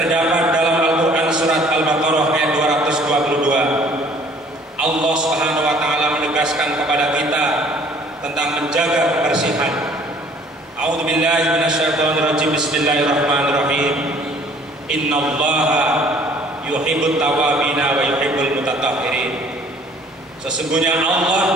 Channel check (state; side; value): normal; both; correlation 0.55